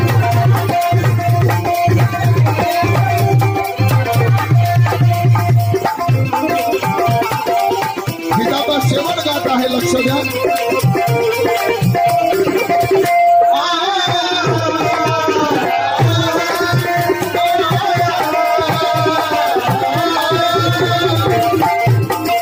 गीताचा शेवट गात आहे. लक्ष द्या.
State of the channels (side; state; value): both; identical; correlation 1.00